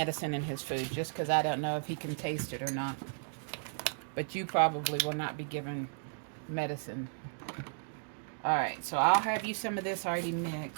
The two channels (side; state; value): left; silent; digital silence